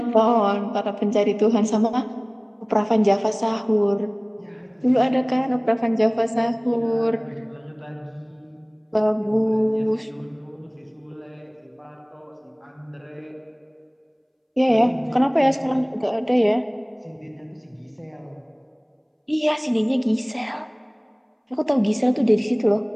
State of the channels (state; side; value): identical; both; correlation 1.00